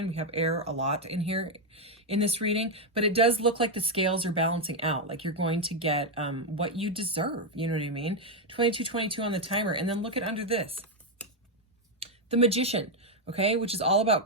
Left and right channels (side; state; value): both; normal; correlation 0.03